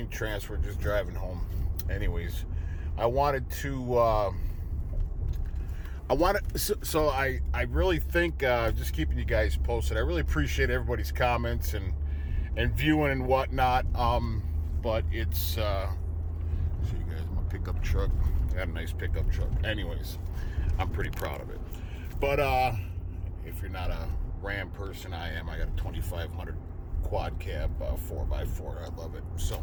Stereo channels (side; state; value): both; identical; correlation 1.00